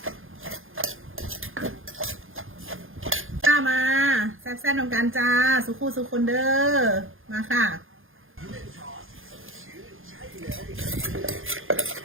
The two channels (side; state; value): left; late; 0.59 ms